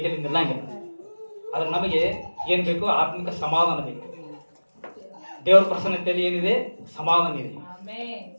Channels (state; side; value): inverted; both; correlation -1.00